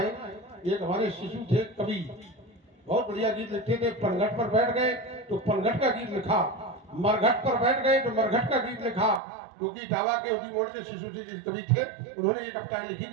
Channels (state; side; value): drops out; left; at 9.2 s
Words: एक हमारे शिशु थे कवि, बहुत बढ़िया गीत लिखते थे। पनघट पर बैठ गए तो पनघट का गीत लिखा, मरघट पर बैठ गए तो मरघट का गीत लिखा, क्योंकि टावा के उदी मोड़ के शिशु जी कवि थे। उन्होंने ये कविताएं लिखी,